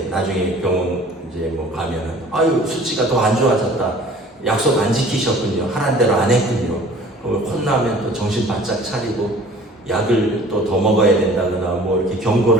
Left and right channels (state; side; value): normal; both; correlation 0.49